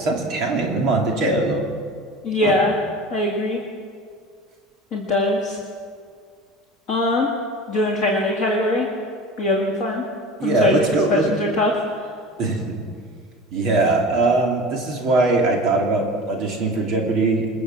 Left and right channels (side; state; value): both; normal; correlation 0.36